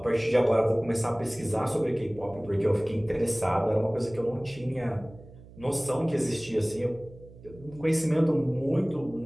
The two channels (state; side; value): noise; right; hum, 20 dB below the sound